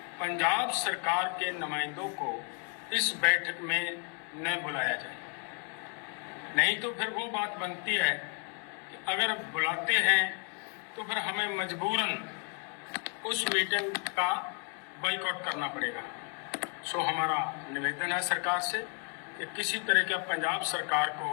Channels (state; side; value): quieter; right; 34.3 dB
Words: पंजाब सरकार के नुमाइंदों को इस बैठक में न बुलाया जाए। नहीं तो फिर वो बात बनती है कि अगर बुलाते हैं तो फिर हमें मजबूरन उस मीटिंग का बाइकआउट करना पड़ेगा। सो हमारा निवेदन है सरकार से कि किसी तरह का पंजाब सरकार